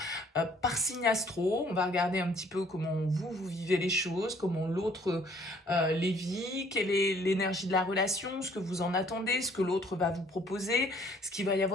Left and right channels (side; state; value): both; normal; correlation 0.60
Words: par signe astro. On va regarder un petit peu comment vous vivez les choses, comment l'autre les vit, quelle est l'énergie de la relation, ce que vous en attendez, ce que l'autre va vous proposer, ce qu'il va y